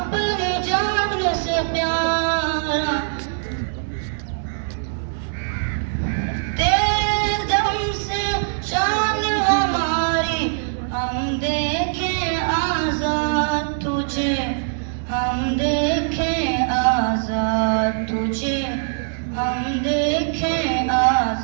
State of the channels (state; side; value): silent; left; digital silence